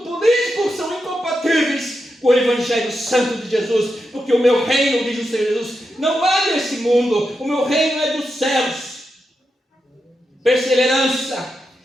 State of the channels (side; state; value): both; normal; correlation 0.87